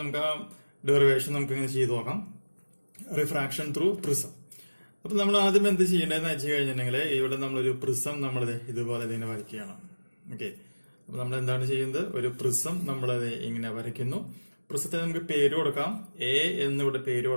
നമുക്ക് ആ ഡെറിവേഷൻ നമുക്ക് ഇങ്ങനെ ചെയ്തു നോക്കാം. Refraction through prism. അപ്പൊ നമ്മൾ ആദ്യം എന്ത് ചെയ്യേണ്ടതെന്ന് വെച്ച് കഴിഞ്ഞിട്ടുണ്ടെങ്കിൽ ഇവിടെ നമ്മളൊരു പ്രിസം നമ്മൾ ഇതുപോലെ ഇതിനെ വരയ്ക്കുകയാണ്. ഓക്കെ, അപ്പൊ നമ്മൾ എന്താണ് ചെയ്യുന്നത്? ഒരു പ്രിസം നമ്മളത് ഇങ്ങനെ വരയ്ക്കുന്നു. പ്രിസത്തിന് നമുക്ക് പേര് കൊടുക്കാം. എ എന്നിവിടെ പേര്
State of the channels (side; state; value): both; inverted; correlation -1.00